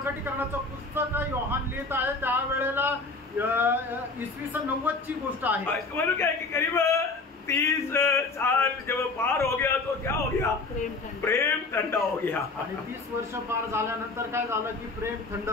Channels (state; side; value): quieter; right; 3.7 dB